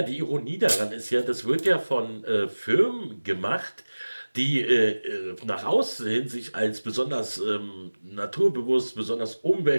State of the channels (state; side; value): inverted; both; correlation -1.00